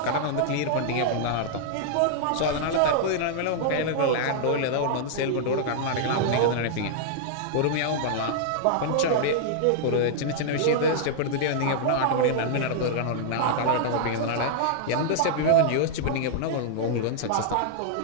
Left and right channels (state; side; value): different; both; correlation -0.01